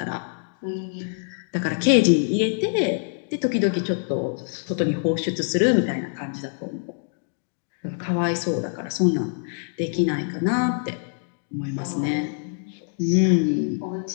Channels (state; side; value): silent; right; digital silence